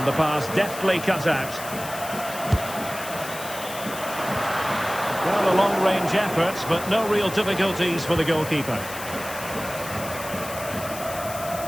the pass deftly cut out. Well, a long-range effort, but no real difficulties for the goalkeeper.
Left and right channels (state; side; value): noise; left; hiss, 11 dB below the sound